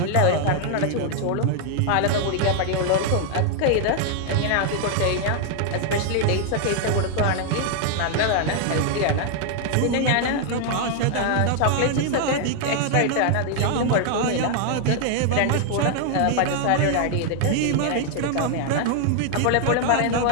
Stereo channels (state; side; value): different; both; correlation 0.00